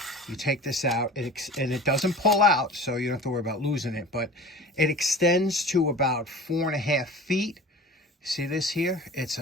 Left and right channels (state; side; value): normal; both; correlation 0.39